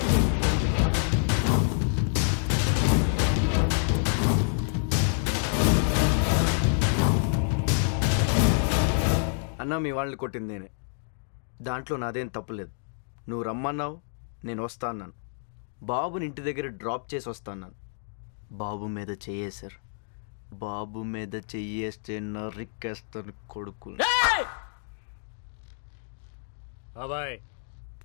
అన్న మీ వాళ్ళని కొట్టింది నేనే. దాంట్లో నాదేం తప్పులేదు. నువ్వు రమ్మన్నావు, నేను వస్తా అన్నాను. బాబుని ఇంటి దగ్గర డ్రాప్ చేసి వస్తా అన్నాను. బాబు మీద చెయ్యేశారు. బాబు మీద చెయ్యేస్తే నరికేస్తాను కొడుకు. బాబాయ్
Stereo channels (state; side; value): silent; right; digital silence